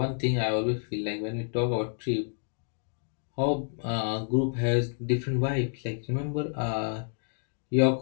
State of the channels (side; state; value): right; silent; 58 dB below the other